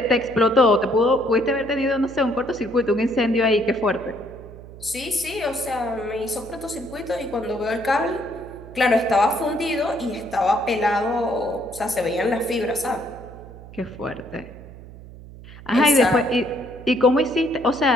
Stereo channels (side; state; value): right; noise; hum, 17 dB below the sound